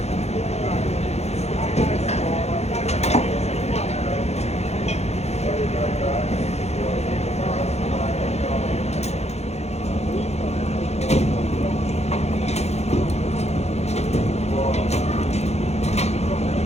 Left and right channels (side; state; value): right; late; 0.31 ms